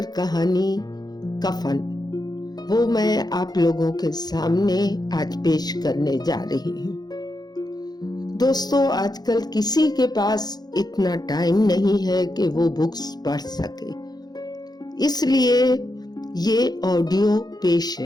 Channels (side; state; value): right; late; 0.19 ms